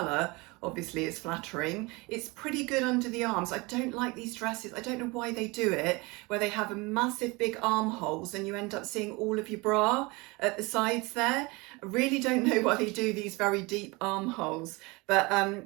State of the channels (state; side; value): quieter; left; 25.2 dB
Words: obviously, is flattering. It's pretty good under the arms. I don't like these dresses. I don't know why they do it, where they have a massive big armholes and you end up seeing all of your bra at the sides there. I really don't know why they do these very deep armholes, but